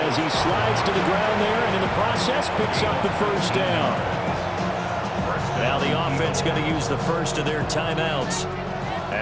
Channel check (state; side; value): identical; both; correlation 1.00